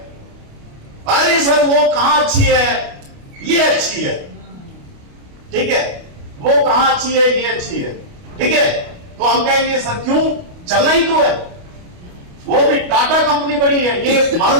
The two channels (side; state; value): left; late; 28 ms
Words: अरे सर वो कहां अच्छी है, ये अच्छी है, ठीक है, वो कहां अच्छी है, ये अच्छी है, ठीक है। तो हम कहेंगे सर क्यों, चलना ही तो है। वो भी टाटा कंपनी बड़ी है, ये